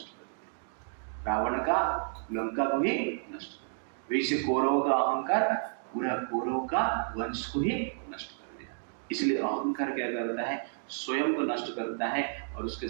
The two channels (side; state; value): left; silent; digital silence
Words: कर दिया, रावण का लंका को ही नष्ट कर दिया। वैसे कौरव का अहंकार पूरा कौरव का वंश को ही नष्ट कर दिया। इसलिए अहंकार क्या करता है, स्वयं को नष्ट करता है और उसके